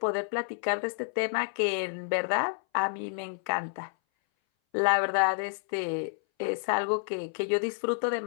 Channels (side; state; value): right; silent; 58 dB below the other